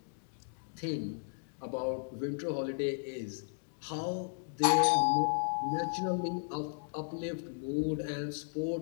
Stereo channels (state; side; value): silent; right; digital silence